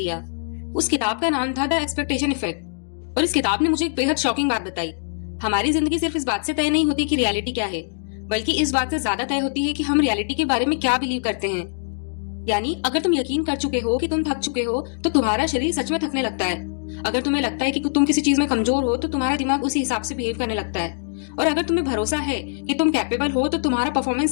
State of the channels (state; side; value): silent; right; digital silence